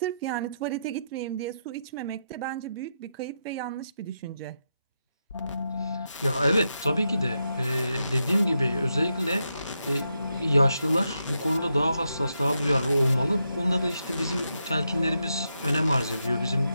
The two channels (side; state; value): both; inverted; correlation -0.84